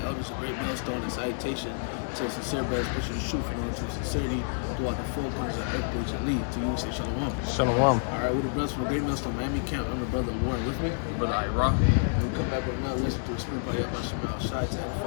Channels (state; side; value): silent; right; digital silence